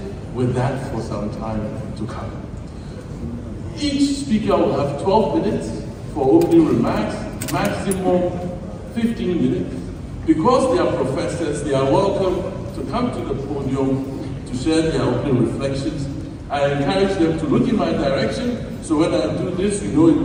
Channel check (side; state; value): both; identical; correlation 1.00